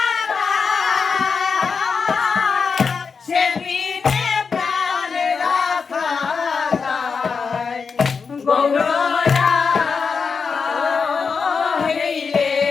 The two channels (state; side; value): quieter; right; 5.4 dB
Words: সে বিনে প্রাণ রাখা যায় গৌররা। হেই রে